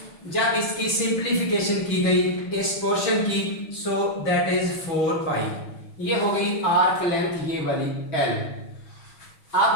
जब इसकी सिंप्लीफिकेशन की गई इस पोर्शन की, सो दैट इज 4 पाई। ये हो गई आर्क लेंथ ये वाली L।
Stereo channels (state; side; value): late; right; 6.3 ms